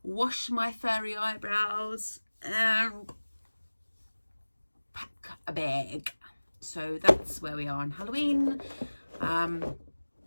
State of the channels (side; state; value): both; inverted; correlation -1.00